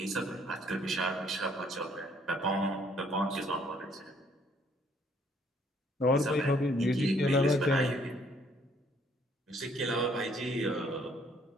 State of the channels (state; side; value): normal; both; correlation 0.64